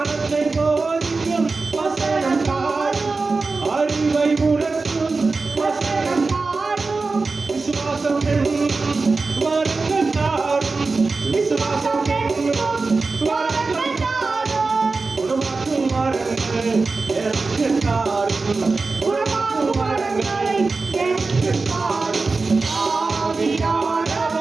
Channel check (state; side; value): quieter; left; 3.9 dB